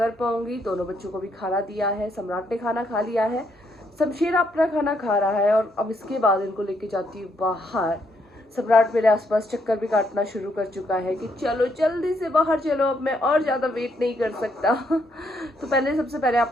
पाऊंगी। दोनों बच्चों को भी खाना दिया है, सम्राट ने खाना खा लिया है, शमशेर अपना खाना खा रहा है और अब इसके बाद इनको लेके जाती हूँ बाहर। सम्राट मेरे आसपास चक्कर भी काटना शुरू कर चुका है कि चलो जल्दी से बाहर चलो, अब मैं और ज़्यादा वेट नहीं कर सकता। तो सबसे पहले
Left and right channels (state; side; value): normal; both; correlation 0.74